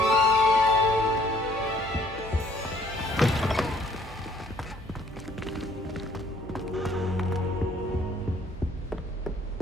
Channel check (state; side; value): normal; both; correlation 0.61